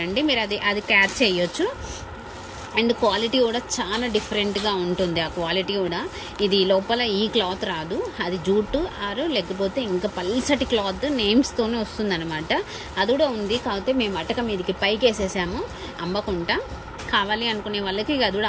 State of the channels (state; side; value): identical; both; correlation 1.00